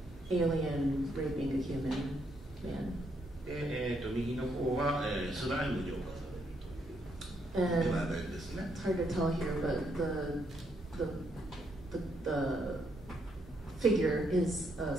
alien raping a human man. 右の方は、スライムに侵される。And it's hard to tell here, but the figure is a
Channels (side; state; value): both; normal; correlation 0.75